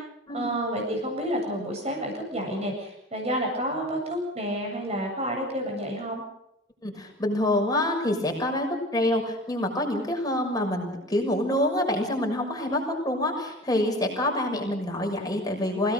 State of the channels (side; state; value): both; normal; correlation 0.38